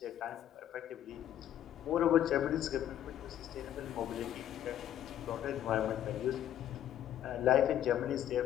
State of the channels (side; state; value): right; quieter; 11.1 dB